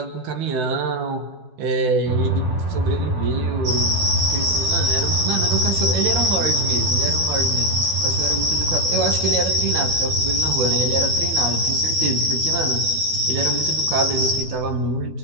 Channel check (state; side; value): late; left; 12 ms